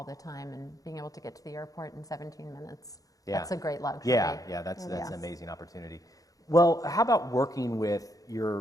the time, and being able to get to the airport in 17 minutes. Yeah. That's a great luxury. Yeah, that's an amazing opportunity. Well, how about working with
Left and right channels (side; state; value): right; late; 0.17 ms